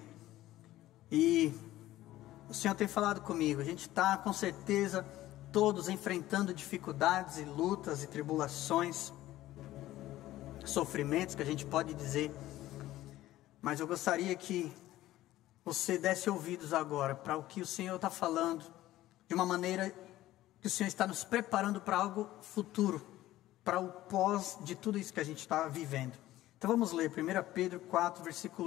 E o Senhor tem falado comigo, a gente está com certeza todos enfrentando dificuldades e lutas e tribulações, sofrimentos que a gente pode dizer, mas eu gostaria que você desse ouvidos agora para o que o Senhor está falando, de uma maneira que o Senhor está nos preparando para algo futuro, para o pós de tudo isso que a gente está vivendo. Então vamos ler 1 Pedro 4,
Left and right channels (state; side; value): quieter; right; 15.3 dB